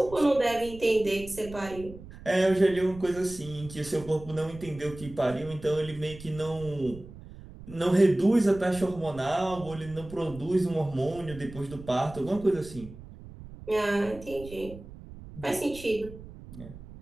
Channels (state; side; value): noise; right; rumble, 16 dB below the sound